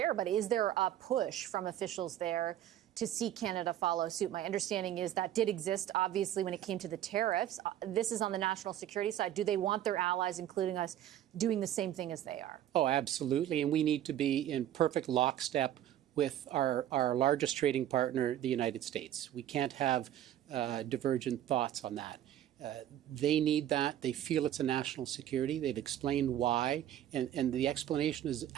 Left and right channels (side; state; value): left; quieter; 11.7 dB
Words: but is there a push from officials there to see Canada follow suit? My understanding is that did exist, obviously, when it came to the tariffs. This is on the national security side. Do they want their allies, including us, doing the same thing as they are? Oh, absolutely. And we need to be in perfect lockstep with our largest trading partner, the United States. We can't have divergent thoughts on that. They need that. They feel it's a national security. They've explained why, and the explanation is